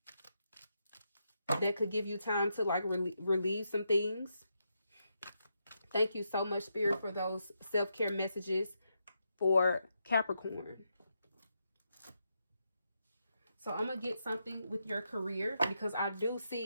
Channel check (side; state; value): both; inverted; correlation -0.83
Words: That could give you time to like relieve some things. Thank you so much, Spirit, for those self-care messages for Capricorn. So I'm going to get something with your career, because I do